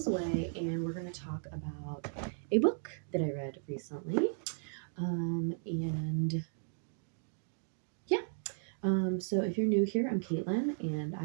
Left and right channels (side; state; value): left; silent; digital silence